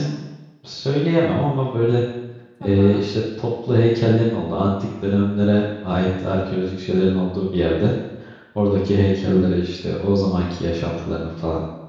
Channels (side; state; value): both; identical; correlation 1.00